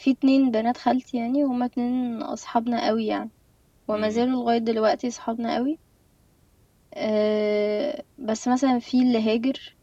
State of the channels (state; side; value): identical; both; correlation 1.00